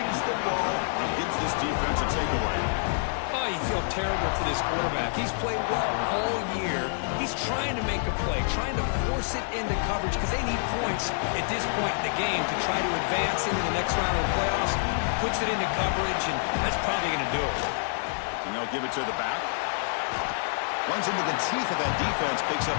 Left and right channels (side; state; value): right; silent; digital silence